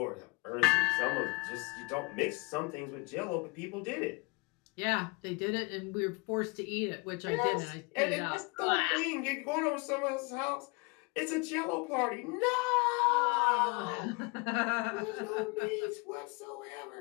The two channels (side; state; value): right; quieter; 28.4 dB